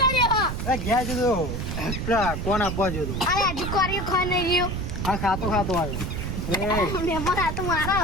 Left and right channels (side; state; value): right; noise; rumble, 4 dB below the sound